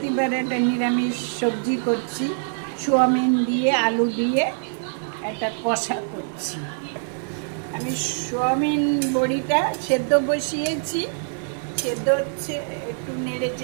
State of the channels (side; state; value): left; silent; digital silence